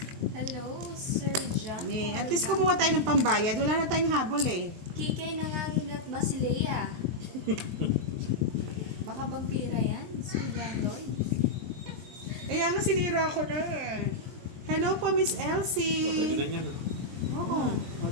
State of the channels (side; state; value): left; late; 23 ms